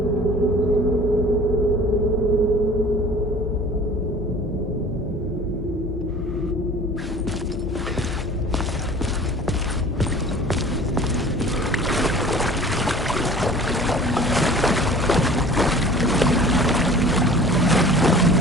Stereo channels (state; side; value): normal; both; correlation 0.45